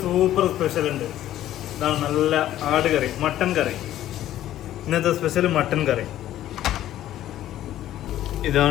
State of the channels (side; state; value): right; quieter; 12.9 dB